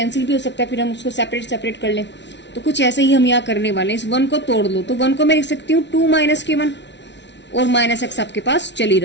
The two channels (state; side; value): late; right; 0.51 ms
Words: भी हो सकता है, फिर हम उसको सेपरेट कर लें। तो कुछ ऐसे ही हम यहाँ करने वाले हैं, इस वन को तोड़ लो, तो वन को मैं लिख सकती हूँ टू माइनस के वन और माइनस एक्स आपके पास चल ही